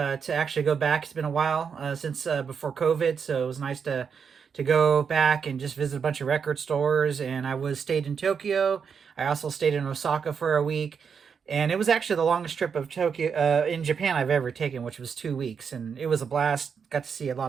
actually go back. It's been a while since before COVID, so it was nice to go back and just visit a bunch of record stores. And I was stayed in Tokyo. I also stayed in Osaka for a week. And it was actually the longest trip of Tokyo in Japan I've ever taken, which was 2 weeks, and it was a blast. Got to see a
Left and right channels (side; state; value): left; quieter; 6.5 dB